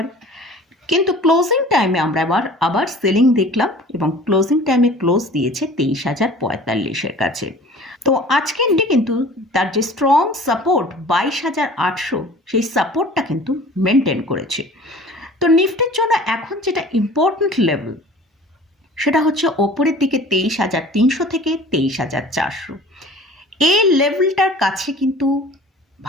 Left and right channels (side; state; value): both; normal; correlation 0.45